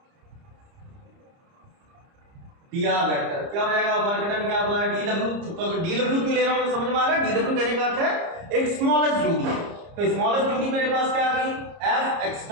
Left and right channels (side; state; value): left; late; 30 ms